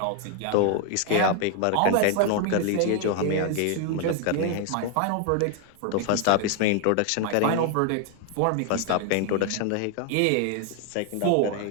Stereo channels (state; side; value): different; both; correlation 0.00